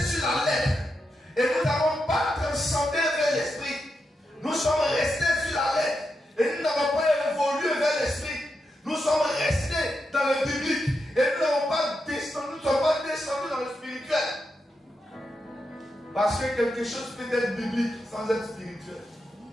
sur la lettre. Et nous n'avons pas transcendé vers l'esprit. Nous sommes restés sur la lettre. Et nous n'avons pas évolué vers l'esprit. Nous sommes restés dans le biblique. Et nous n'avons pas descendu, nous ne sommes pas descendus dans le spirituel. Parce que quelque chose peut être biblique sans être spirituel.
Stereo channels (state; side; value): normal; both; correlation 0.86